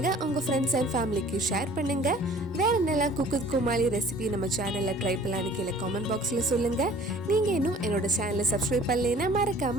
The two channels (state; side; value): normal; both; correlation 0.50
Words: உங்க ஃப்ரெண்ட்ஸ் அண்ட் ஃபேமிலிக்கு ஷேர் பண்ணுங்க. வேற என்னெல்லாம் குக்கு குமாலி ரெசிபி நம்ம சேனல்ல ட்ரை பண்ணலான்னு கீழே கமெண்ட் பாக்ஸ்ல சொல்லுங்க. நீங்க இன்னும் என்னோட சேனலை சப்ஸ்கிரைப் பண்ணலைன்னா